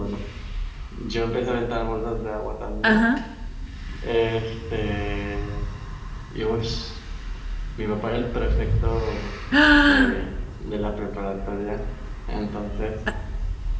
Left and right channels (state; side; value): identical; both; correlation 1.00